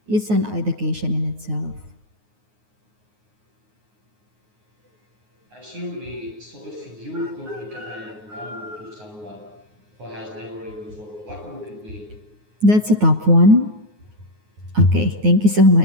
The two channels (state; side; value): late; left; 9.5 ms